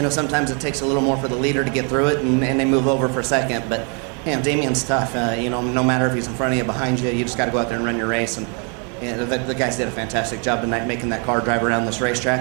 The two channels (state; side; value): quieter; left; 37.1 dB